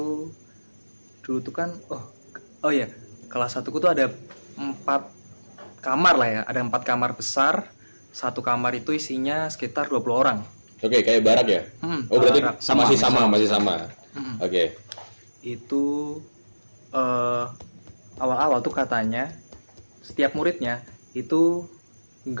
dulu tuh kan oh ya, kelas 1 tuh ada 4 kamar lah ya. Ada 4 kamar besar. Satu kamar itu isinya sekitar 20 orang. Oke, kayak barak ya? Oh, berarti barak. masih sama. Mm-mm. Oke. Itu awal-awal tuh katanya setiap muridnya itu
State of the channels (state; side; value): inverted; both; correlation -1.00